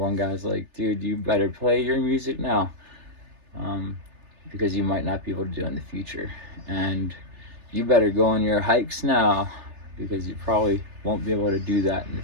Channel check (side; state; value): left; late; 3.3 ms